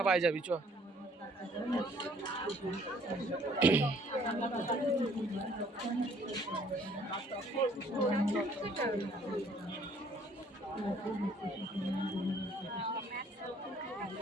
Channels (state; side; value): normal; both; correlation 0.60